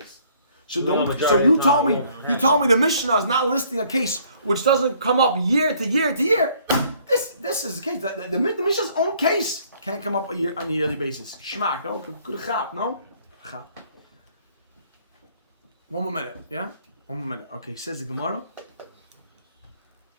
is. So Well, don't. majority So of you the time told me. it won't You happen. told me the Mishnah is not listing a case which doesn't come up year to year to year. This is the case. The Mishnah's own case can't come up on a yearly basis. Shmak, no, good chap, no. Chap. One more minute, yeah. One more minute. Okay, says the Gemara.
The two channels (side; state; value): both; inverted; correlation -0.61